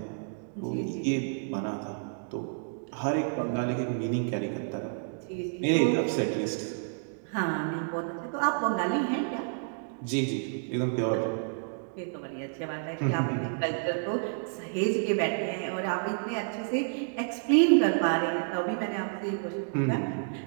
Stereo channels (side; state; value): left; silent; digital silence